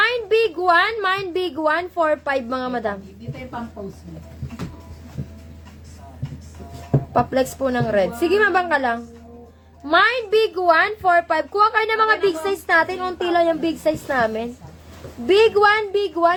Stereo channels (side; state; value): both; identical; correlation 1.00